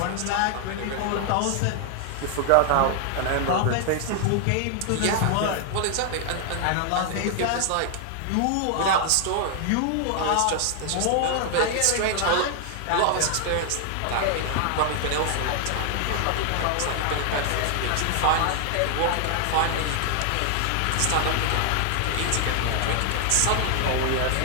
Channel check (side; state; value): both; different; correlation 0.00